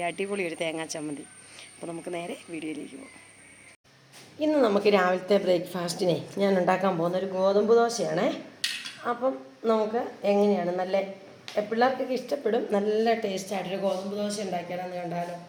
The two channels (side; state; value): both; identical; correlation 1.00